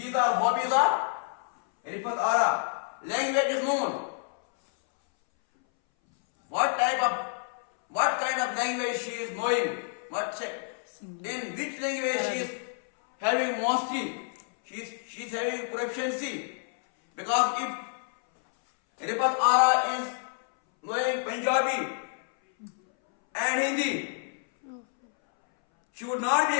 are hobbies of Rifat Ara. Language is known. What kind of language she is knowing? In which language she is having mastery? She is having proficiency. Because if Rifat Ara is knowing Punjabi and Hindi, she would not be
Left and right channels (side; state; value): right; silent; 59 dB below the other